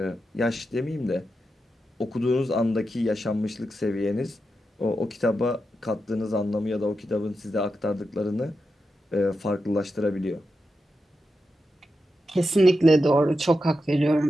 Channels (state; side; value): normal; both; correlation 0.88